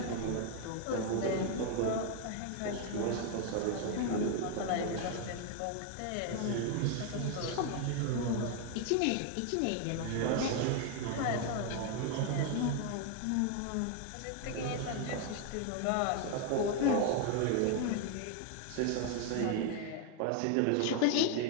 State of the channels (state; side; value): different; both; correlation 0.01